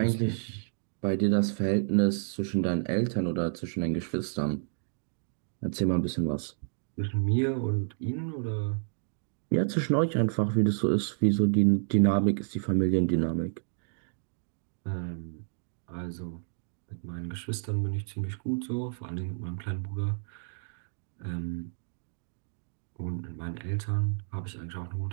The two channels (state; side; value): silent; left; digital silence